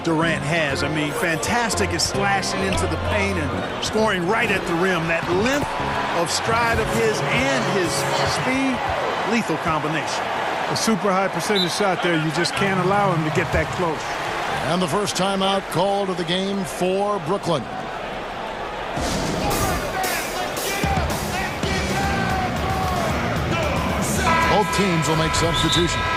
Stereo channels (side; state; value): both; identical; correlation 1.00